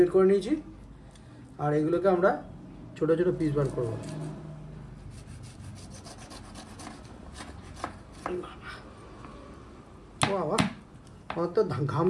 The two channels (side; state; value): both; identical; correlation 1.00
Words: করে নিয়েছি। আর এগুলোকে আমরা ছোট ছোট পিস বার করবো। বাবা, আমার তো ঘাম